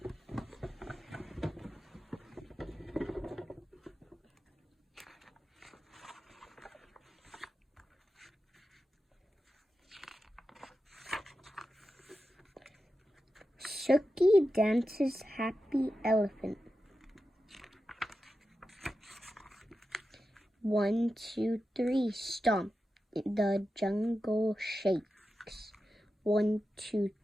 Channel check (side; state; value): both; normal; correlation 0.91